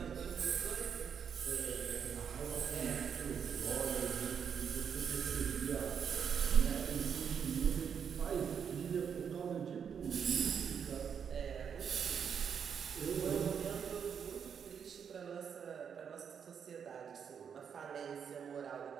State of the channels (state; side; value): quieter; left; 7.3 dB